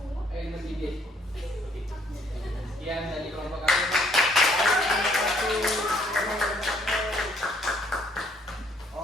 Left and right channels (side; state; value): both; normal; correlation 0.64